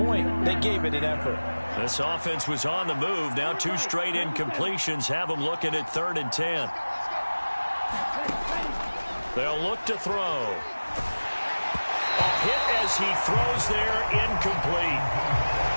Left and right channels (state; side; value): inverted; both; correlation -1.00